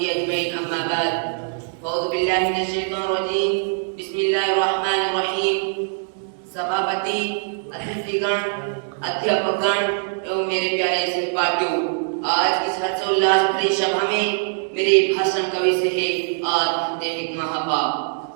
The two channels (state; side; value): silent; left; digital silence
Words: أجمعين. أما بعد، أعوذ بالله من الشيطان الرجيم. بسم الله الرحمن الرحيم. सभापति, अतिथिगण, अध्यापकगण एवं मेरे प्यारे सहपाठियों, आज इस हर्षोल्लास भरी सभा में मेरे भाषण का विषय है आत्महत्या एक महापाप।